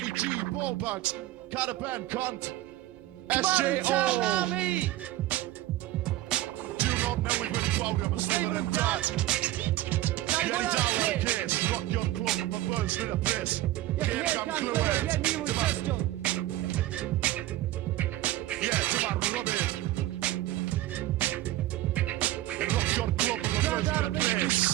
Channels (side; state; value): left; quieter; 15.4 dB